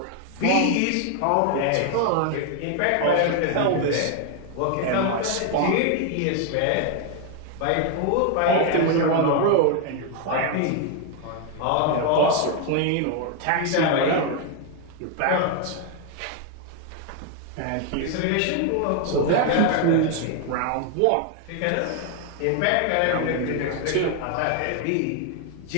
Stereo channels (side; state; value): both; different; correlation 0.00